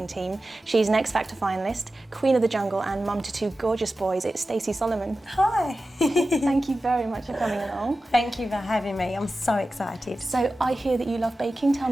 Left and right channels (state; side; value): normal; both; correlation 0.94